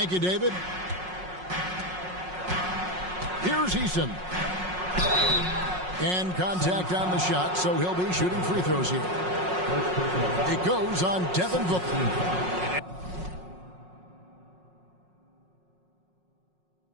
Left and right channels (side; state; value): left; late; 5.5 ms